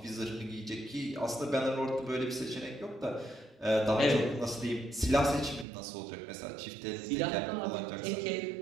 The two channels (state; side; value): drops out; left; at 5.7 s